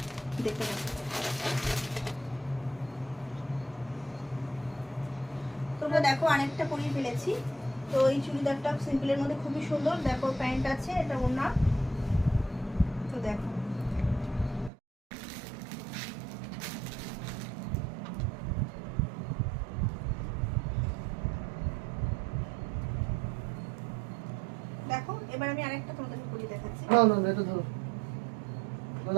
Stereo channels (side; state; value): left; drops out; at 14.7 s